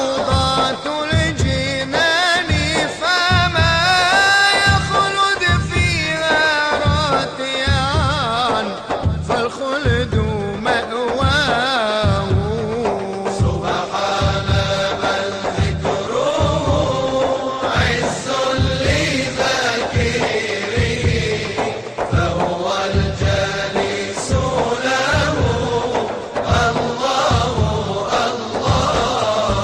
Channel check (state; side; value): identical; both; correlation 1.00